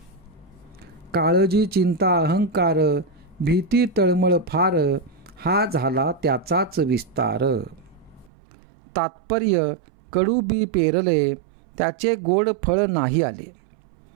काळजी चिंता अहंकार, भीती तळमळ फार, हा झाला त्याचाच विस्तार. तात्पर्य, कडू बी पेरले, त्याचे गोड फळ नाही आले.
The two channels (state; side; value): drops out; left; at 8.3 s